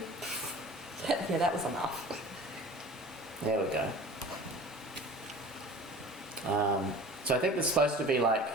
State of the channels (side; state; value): both; normal; correlation 0.41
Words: yeah, that was enough. There we go. So I think there's supposed to be like